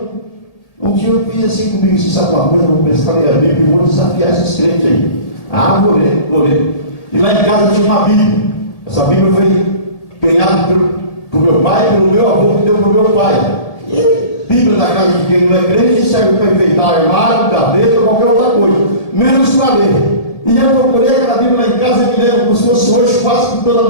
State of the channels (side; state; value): right; late; 1.8 ms